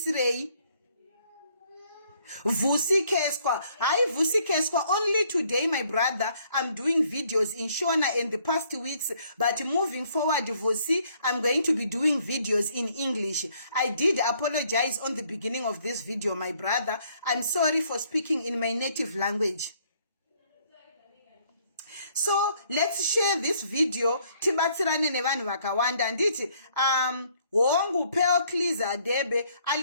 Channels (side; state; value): both; inverted; correlation -0.65